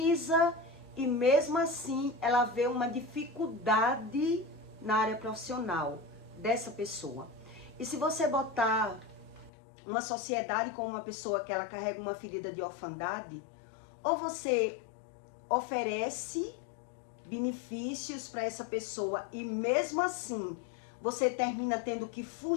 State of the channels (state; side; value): drops out; right; at 9.5 s